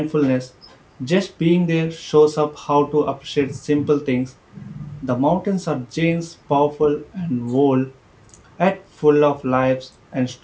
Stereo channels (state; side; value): identical; both; correlation 1.00